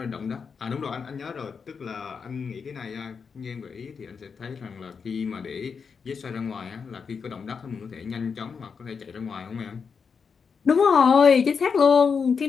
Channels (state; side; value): quieter; right; 5.8 dB